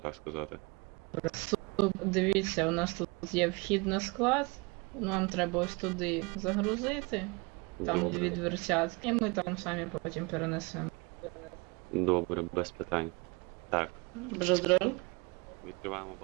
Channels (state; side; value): quieter; left; 27.9 dB